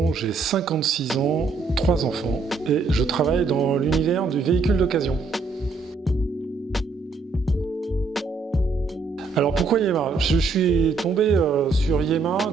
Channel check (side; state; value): left; quieter; 4.2 dB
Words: j'ai 56 ans, 3 enfants et je travaille dans l'univers du véhicule d'occasion. Alors pourquoi Yema? Je suis tombé sur Yema